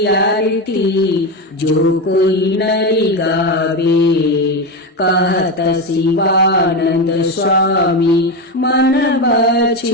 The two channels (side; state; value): both; normal; correlation 0.15